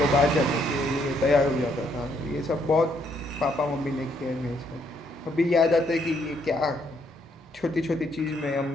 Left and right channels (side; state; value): both; normal; correlation 0.71